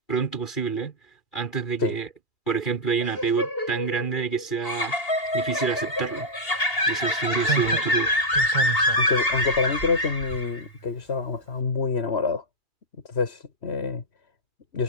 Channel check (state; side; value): late; right; 2.8 ms